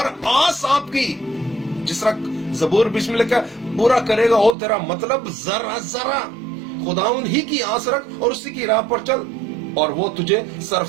آس آپ کی، جس طرح زبور 20 میں لکھا پورا کرے گا وہ تیرا مطلب ذرا ذرا. خداوند ہی کی آس رکھ اور اسی کی راہ پر چل، اور وہ تجھے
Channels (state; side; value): drops out; left; at 4.5 s